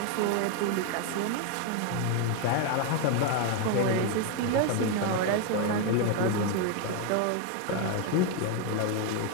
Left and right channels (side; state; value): both; different; correlation 0.01